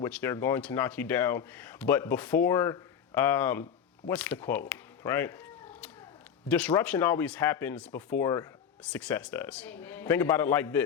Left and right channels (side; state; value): right; quieter; 8.1 dB